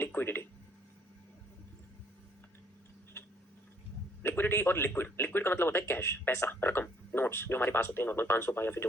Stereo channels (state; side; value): normal; both; correlation 0.65